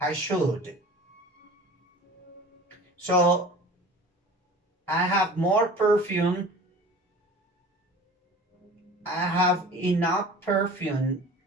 So I have more perfume. I have enough perfume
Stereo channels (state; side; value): normal; both; correlation 0.41